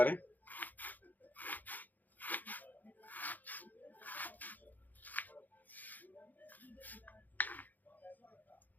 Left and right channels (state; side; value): late; right; 0.083 ms